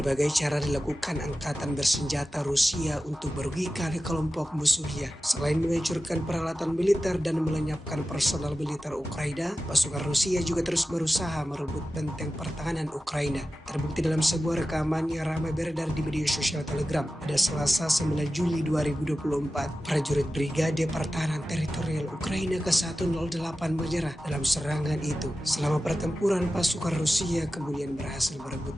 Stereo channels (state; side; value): normal; both; correlation 0.94